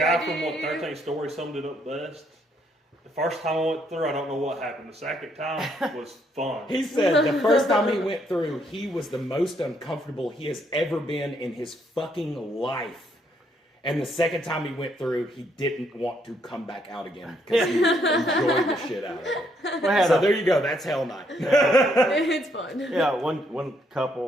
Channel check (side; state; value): both; normal; correlation 0.72